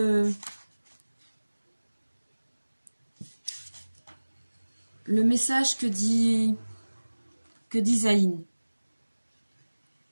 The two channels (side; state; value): both; inverted; correlation -1.00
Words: le message que dit Zayn.